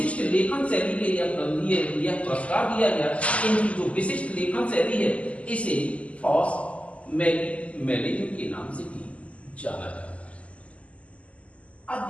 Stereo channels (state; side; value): late; right; 0.064 ms